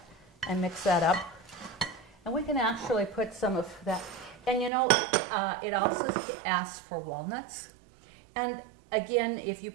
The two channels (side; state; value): left; drops out; at 4.7 s